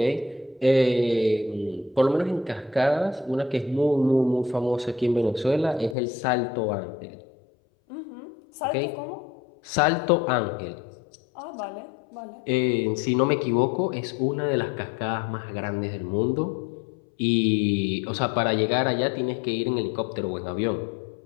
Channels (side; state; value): right; drops out; at 6.0 s